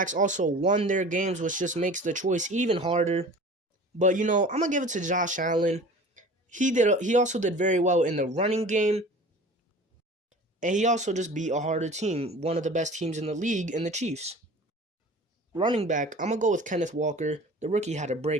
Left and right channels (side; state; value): both; normal; correlation 0.41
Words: also won their games, which just makes the choice even harder. But I'm going to give it to Josh Allen. He also did very well in the running game. And he also just beat a harder team, one of the best teams in the league, in the Chiefs. Running back, I'm going to go with Kenneth Walker. The rookie had a